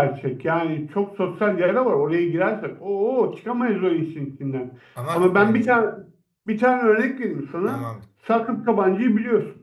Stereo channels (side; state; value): both; identical; correlation 1.00